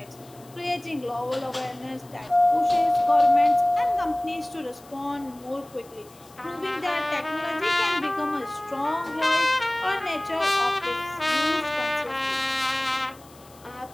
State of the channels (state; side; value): noise; left; hiss, 25 dB below the sound